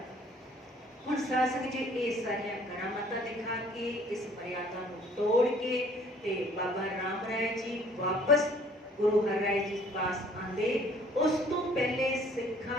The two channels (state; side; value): normal; both; correlation 0.56